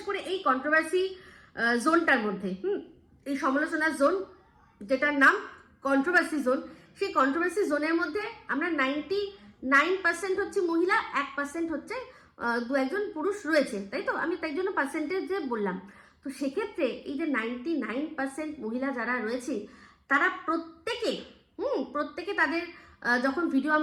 করে এই কন্ট্রোভার্সি জোনটার মধ্যে, এই সমালোচনার জোন যেটার নাম কন্ট্রোভার্সি জোন, সেই কন্ট্রোভার্সি জোনের মধ্যে আমরা 99% হচ্ছে মহিলা, 1% হচ্ছে দু একজন পুরুষ রয়েছে, তাই তো? আমি তাই জন্য পার্সেন্টেজে বললাম। তো সেক্ষেত্রে এই যে 99% মহিলা যারা রয়েছে, তারা প্রত্যেকে তাদের যখন ভিডিও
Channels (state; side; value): identical; both; correlation 1.00